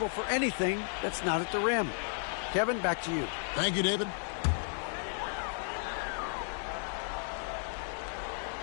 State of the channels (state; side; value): silent; right; 55 dB below the other